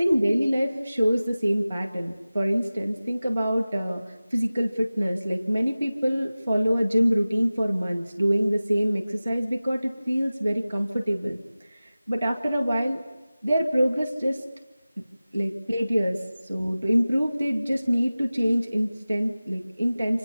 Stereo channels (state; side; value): inverted; both; correlation -0.97